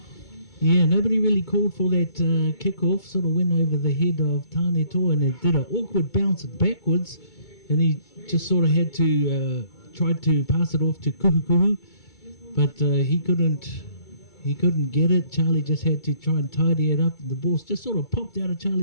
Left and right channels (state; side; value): late; right; 2.2 ms